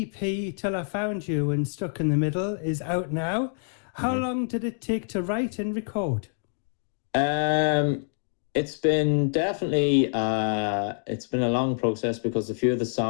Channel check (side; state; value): right; silent; digital silence